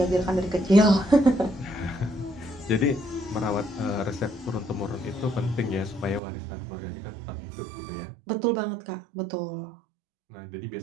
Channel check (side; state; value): left; drops out; at 6.2 s